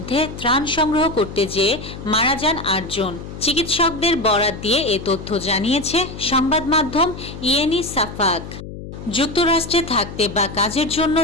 ত্রাণ সংগ্রহ করতে যেয়ে মারা যান 8 জন। চিকিৎসকদের বরাত দিয়ে এ তথ্য জানিয়েছে সংবাদ মাধ্যম ইয়েনি সাফাক। যুক্তরাষ্ট্রে থাকতে বা কাজের জন্য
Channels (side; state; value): left; noise; hum, 11 dB below the sound